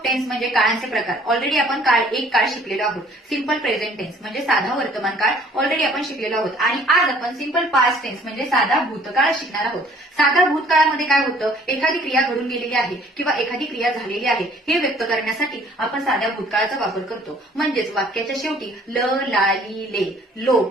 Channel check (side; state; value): both; normal; correlation 0.56